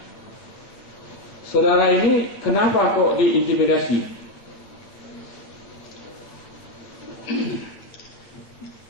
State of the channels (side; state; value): right; late; 9.1 ms